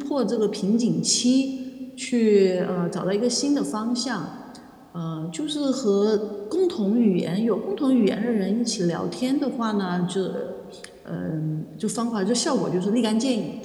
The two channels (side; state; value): both; identical; correlation 1.00